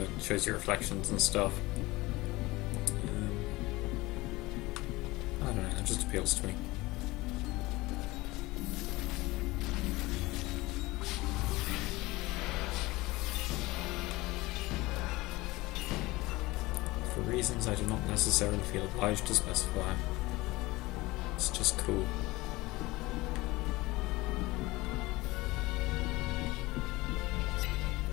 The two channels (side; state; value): right; quieter; 20.7 dB